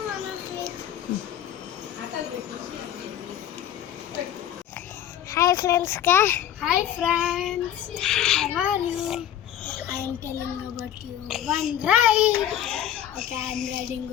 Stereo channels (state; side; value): quieter; right; 11.0 dB